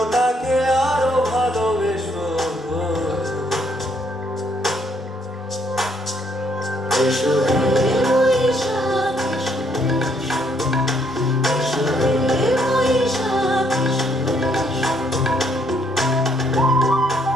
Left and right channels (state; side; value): normal; both; correlation 0.69